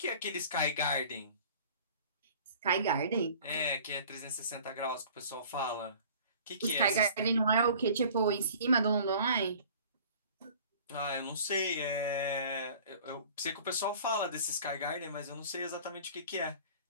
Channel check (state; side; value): inverted; both; correlation -0.46